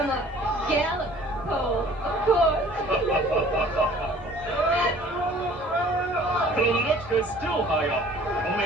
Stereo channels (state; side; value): normal; both; correlation 0.51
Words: a gallop pole, of course. Colonel NINOTCHKA is still high up.